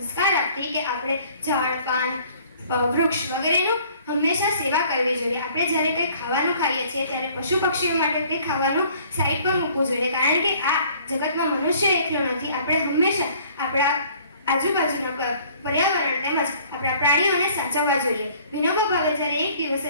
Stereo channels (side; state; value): both; inverted; correlation -0.56